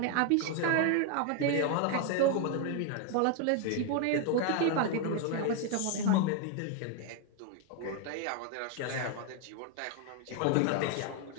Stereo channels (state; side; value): different; both; correlation 0.01